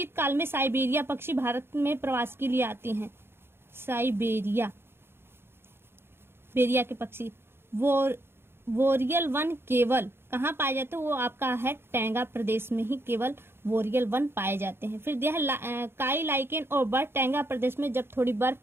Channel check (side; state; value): left; late; 0.11 ms